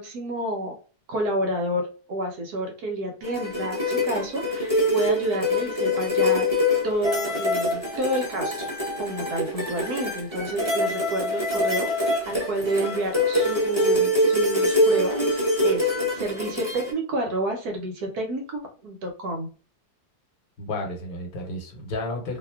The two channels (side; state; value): left; late; 1.3 ms